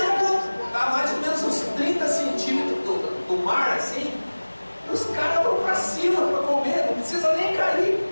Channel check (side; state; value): both; inverted; correlation -1.00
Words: está mais ou menos uns 30 centímetros do mar assim, os caras vão para cima para comer, não precisa nem cair.